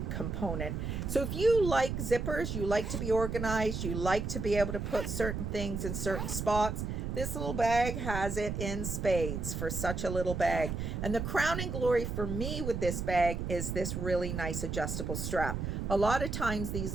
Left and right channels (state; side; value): noise; right; rumble, 3 dB below the sound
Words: component. So if you like zippers, you like to be organized, you like to be able to put certain things in certain spots, this little bag has it in spades for such a little bag. And the crowning glory for me with this bag is this really nice adjustable strap. A lot of times these